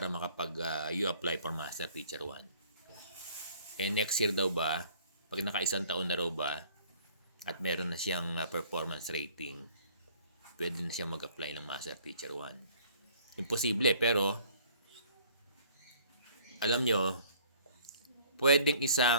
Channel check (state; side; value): inverted; both; correlation -0.55